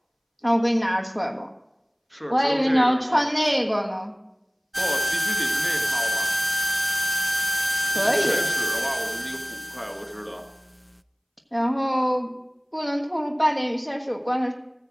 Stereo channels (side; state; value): both; identical; correlation 1.00